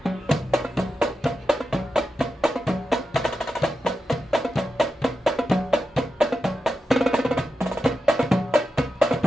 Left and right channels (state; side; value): normal; both; correlation 0.90